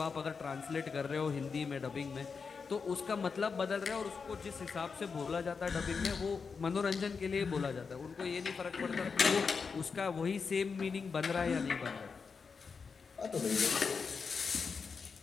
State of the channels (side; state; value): right; quieter; 5.3 dB